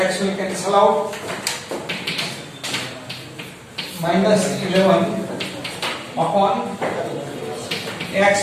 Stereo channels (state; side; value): identical; both; correlation 1.00